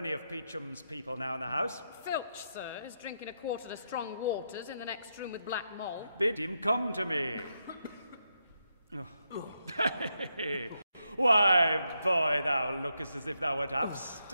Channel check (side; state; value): both; inverted; correlation -0.83